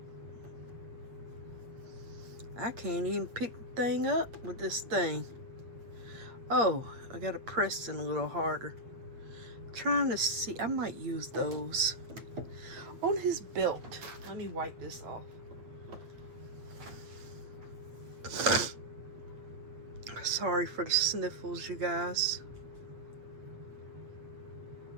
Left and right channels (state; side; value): late; left; 8.5 ms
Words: I can't even pick the thing up with this thing. Oh, I gotta press it a little harder. I'm trying to see. I might use those. On his belt. Let me wipe this off. Sorry for the sniffles, you guys.